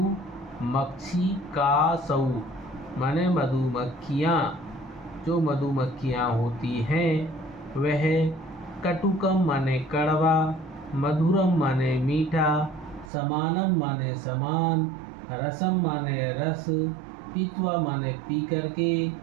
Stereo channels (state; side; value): drops out; left; at 13.1 s